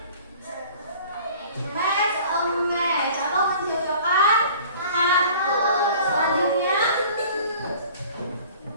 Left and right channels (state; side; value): inverted; both; correlation -0.48